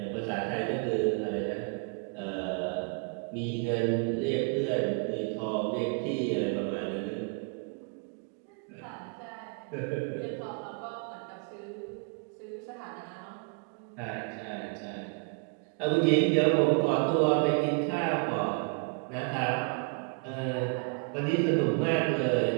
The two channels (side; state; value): left; quieter; 36.0 dB